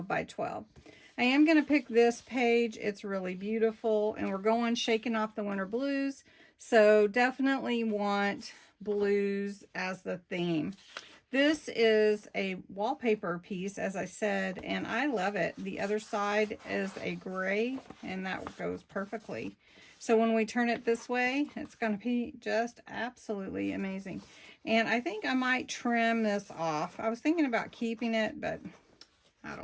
by 12. I am going to pick this page. It's really beautiful, and we're going shaking off the winter blues, so definitely want blues as the theme. This is a wallpaper piece, as I said, and I love it. The other side is a gray, and that goes perfectly. So when we turn it this way, it's going to be just absolutely amazing. And I think I might trim this off. I was thinking about keeping it, but I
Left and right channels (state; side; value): identical; both; correlation 1.00